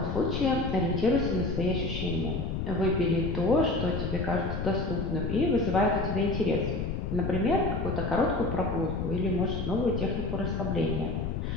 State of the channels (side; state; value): left; noise; rumble, 3 dB below the sound